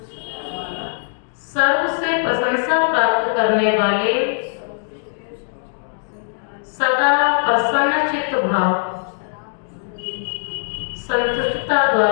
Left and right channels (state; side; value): silent; right; digital silence